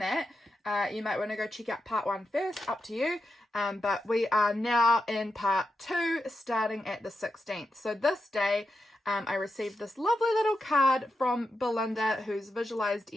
you might want to go check out part 1 first, up to you. But we are now in part 2, starting at the 16th. So this day, I received this lovely little card from Belinda, who's visualized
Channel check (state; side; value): normal; both; correlation 0.87